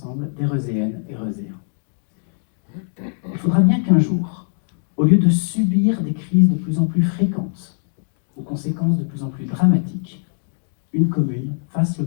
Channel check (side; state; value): right; silent; digital silence